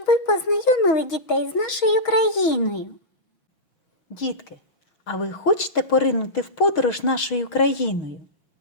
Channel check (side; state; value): right; late; 6.0 ms